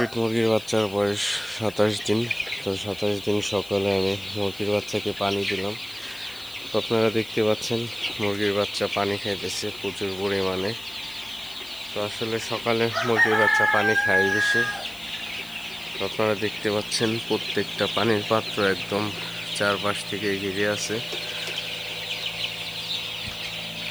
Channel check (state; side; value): noise; left; hiss, 19 dB below the sound